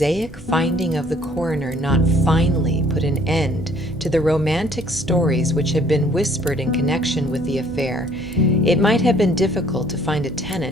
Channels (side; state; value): both; normal; correlation 0.59